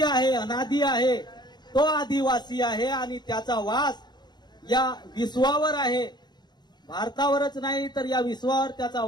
आहे, अनादि आहे, तो आदिवासी आहे आणि त्याचा वास या विश्वावर आहे। भारतावरच नाही तर या विश्वावर त्याचा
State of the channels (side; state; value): right; late; 0.21 ms